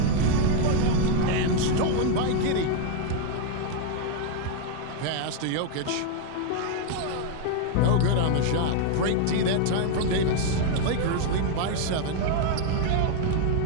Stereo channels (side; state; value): both; different; correlation 0.01